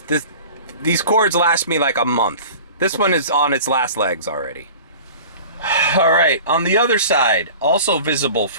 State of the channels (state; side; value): inverted; both; correlation -0.40